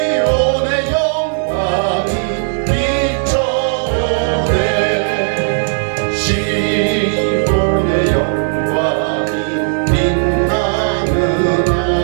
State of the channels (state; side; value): silent; left; digital silence